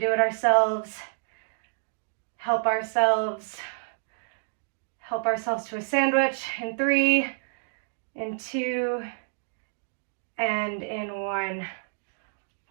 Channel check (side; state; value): left; silent; digital silence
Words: it ourselves, help ourselves to a sandwich in 3, in 2, and in 1.